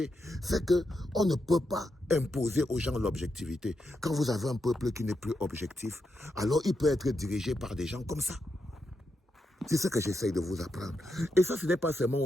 fait qu'on ne peut pas imposer aux gens l'objectivité. Quand vous avez un peuple qui n'est plus objectif, alors il peut être dirigé par des gens comme ça. C'est ce que j'essaye de vous apprendre. Et ça, ce n'est pas seulement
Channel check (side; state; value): both; normal; correlation 0.84